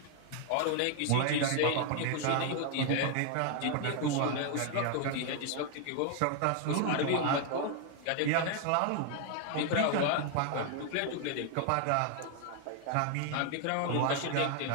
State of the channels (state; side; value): different; both; correlation 0.00